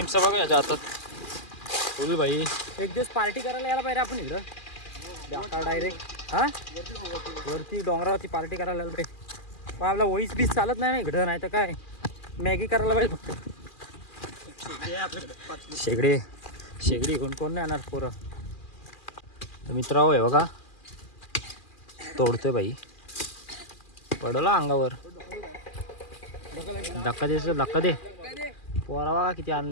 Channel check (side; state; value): right; late; 2.4 ms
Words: बघा याच्या हातात फुल भाई. एक दिवस पार्टी करायला यायला पाहिजे आपण इकडं डायरेक्ट. हां वरती डोंगरावरती पार्टी करायला यायला पाहिजे. पण आपला वॉईस बीस चालत नाही ना इकडं, नाही तर काय मॅगी करायला पाहिजे फक्त. शेगडी कोण नाही येणार पोरं. तर मित्रांनो हे बघा तोडतोय बाई, पडला अंगावर. धक्का दे पोरा बघा किती